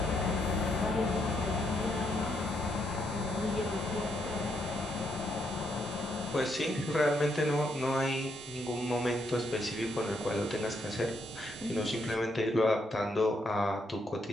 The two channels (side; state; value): both; normal; correlation 0.77